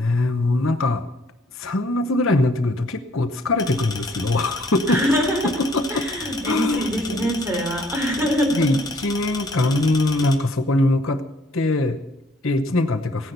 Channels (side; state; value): both; normal; correlation 0.63